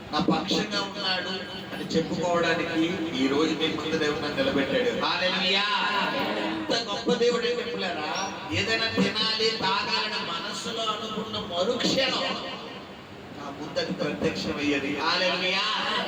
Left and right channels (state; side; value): identical; both; correlation 1.00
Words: నా పక్షంగా ఉన్నాడు అని చెప్పుకోవడానికి ఈ రోజు మీ ముందు దేవుడు నన్ను నిలబెట్టాడు. హల్లెలూయా. ఎంత గొప్ప దేవుడు అంటే పిల్లరా, ఏదైనా తినాలి తాగాలని మనస్సులో అనుకున్న మరుక్షణం నా ముందది ప్రత్యక్షమయ్యేది. హల్లెలూయా.